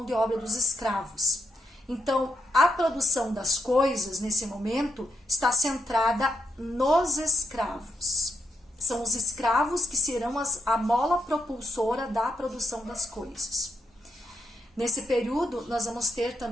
de obra dos escravos. Então, a produção das coisas, nesse momento, está centrada nos escravos. São os escravos que serão a mola propulsora da produção das coisas. Nesse período, nós vamos ter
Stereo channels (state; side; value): normal; both; correlation 0.80